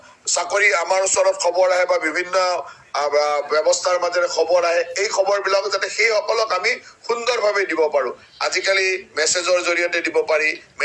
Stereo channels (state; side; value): identical; both; correlation 1.00